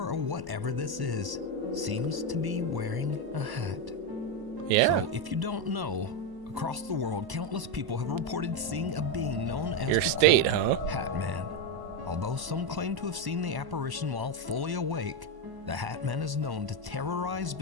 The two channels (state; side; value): late; left; 1.0 ms